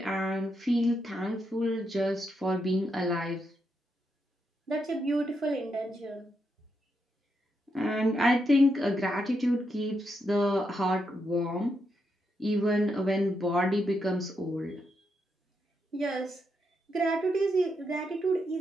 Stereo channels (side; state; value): both; normal; correlation 0.81